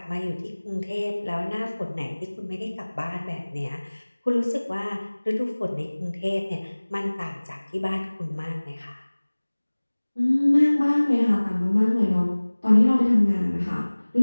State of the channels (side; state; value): both; inverted; correlation -1.00